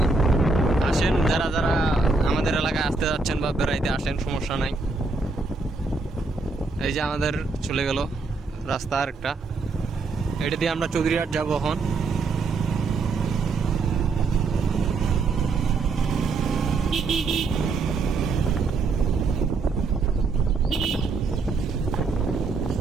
আসেন, যারা যারা আমাদের এলাকায় আসতে যাচ্ছেন বা বেড়াইতে আসেন, সমস্যা নাই। এই যে আমাদের চলে গেল রাস্তা আরেকটা, এটা দিয়ে আমরা চৌধুরীহাট যাবো এখন।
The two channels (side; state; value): left; quieter; 4.0 dB